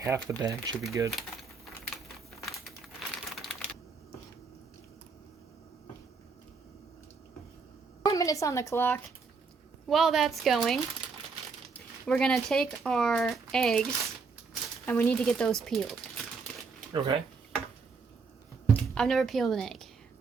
the bag should be good. Minutes on the clock. While that's going, we're gonna take our eggs, and we need to get those peeled. Okay. I've never peeled an egg.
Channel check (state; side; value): quieter; left; 4.8 dB